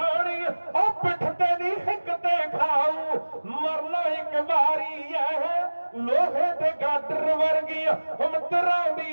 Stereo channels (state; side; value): inverted; both; correlation -1.00